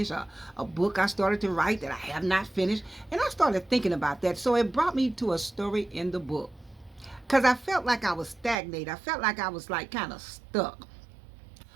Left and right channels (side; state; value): left; drops out; at 8.6 s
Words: a book I started to write that I have not finished. And I started thinking about that. So it brought me to a story in the book because I felt like I was stagnated. I felt like I was like kind of stuck.